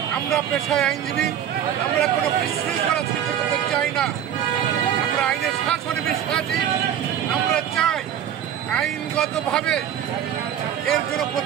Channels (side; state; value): left; quieter; 9.9 dB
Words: আমরা পেশায় আইনজীবী, আমরা কোনো বিশৃঙ্খলা সৃষ্টি করতে চাই না। আমরা আইনের শাসনে বিশ্বাসী। আমরা চাই আইনগতভাবে এর জন্য